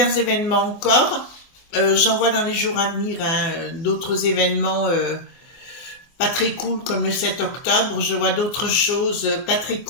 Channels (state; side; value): late; right; 24 ms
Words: événements encore. J'en vois dans les jours à venir hein, d'autres événements pas très cool comme le 7 octobre. Je vois d'autres choses pas très